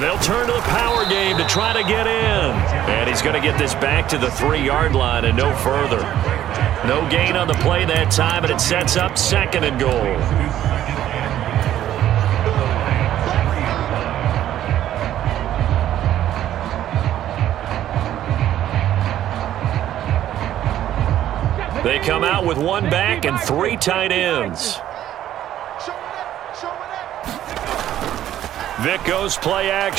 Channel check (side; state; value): left; quieter; 12.0 dB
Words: they'll turn to the power game to try to get in. And he's going to get this back to the 3-yard line and no further. No gain on the play that time, and it sets up 2nd and goal. They come out with 1 back and 3 tight ends. Vic goes play